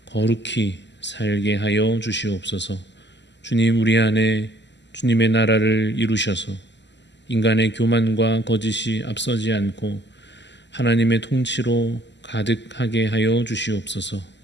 거룩히 살게 하여 주시옵소서. 주님, 우리 안에 주님의 나라를 이루셔서 인간의 교만과 거짓이 앞서지 않고 하나님의 통치로 가득하게 하여 주시옵소서.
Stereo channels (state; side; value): late; right; 0.51 ms